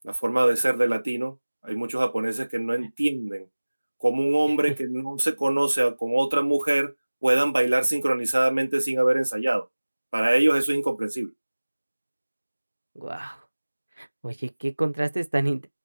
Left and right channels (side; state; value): both; inverted; correlation -1.00